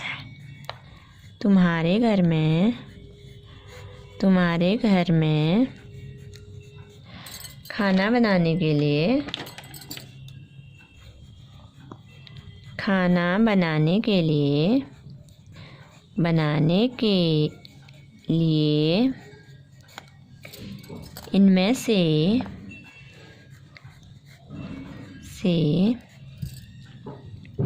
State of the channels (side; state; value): both; identical; correlation 1.00